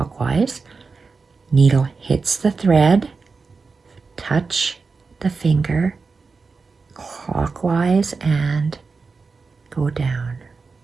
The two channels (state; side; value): quieter; left; 4.5 dB